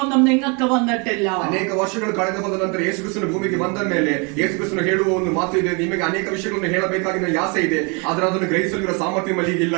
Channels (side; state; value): left; quieter; 32.8 dB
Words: ഒന്നും നിങ്ങൾക്ക് വന്നിട്ടില്ല. ಅನೇಕ ವರ್ಷಗಳು ಕಳೆದು ಹೋದ ನಂತರ ಯೇಸು ಕ್ರಿಸ್ತನ ಭೂಮಿಗೆ ಬಂದ ಮೇಲೆ ಯೇಸು ಕ್ರಿಸ್ತನು ಹೇಳುವ ಒಂದು ಮಾತು ಇದೆ, ನಿಮಗೆ ಅನೇಕ ವಿಷಯಗಳನ್ನು ಹೇಳಬೇಕಾಗಿನ ಆಸೆ ಇದೆ, ಆದರೆ ಅದನ್ನು ಗ್ರಹಿಸಲಿರುವ ಸಾಮರ್ಥ್ಯ ಮಲ್ಲಿಗೆ ಇಲ್ಲ